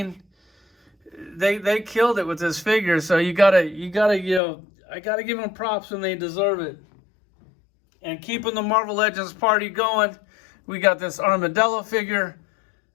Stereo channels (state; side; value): drops out; right; at 4.4 s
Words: they killed it with this figure. So I gotta give them props when they deserve it. And keeping the Marvel Legends party going, we got this Armadillo figure.